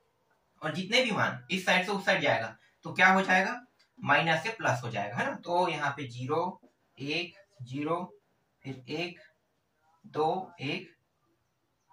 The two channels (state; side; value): identical; both; correlation 1.00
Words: और जितने भी मान इस साइड से उस साइड जाएगा तो क्या हो जाएगा, माइनस से प्लस हो जाएगा, है ना। तो यहाँ पे 0 1 0 फिर 1 2 1